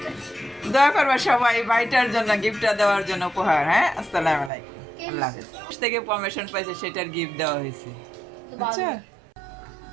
দোয়া করবা সবাই ভাইটার জন্য গিফটটা দেওয়ার জন্য উপহার আসসালামু আলাইকুম আল্লাহ হাফেজ থেকে পারমিশন পাইছে সেটার গিফট দেওয়া হয়েছে আচ্ছা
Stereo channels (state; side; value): drops out; left; at 4.5 s